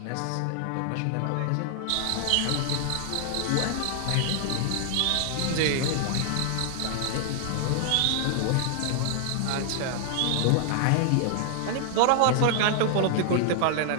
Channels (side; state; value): both; different; correlation 0.00